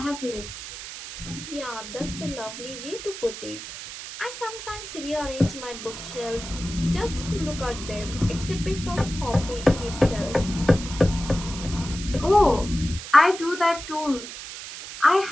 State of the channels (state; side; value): noise; right; hiss, 10 dB below the sound